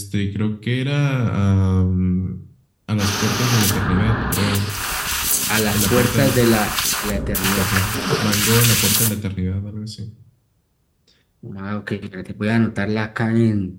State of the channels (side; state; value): both; identical; correlation 1.00